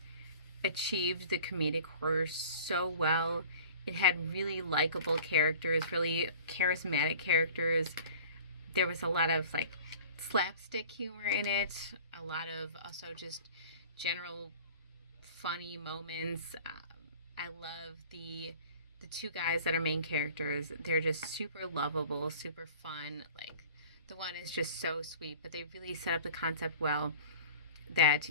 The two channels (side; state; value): both; inverted; correlation -0.44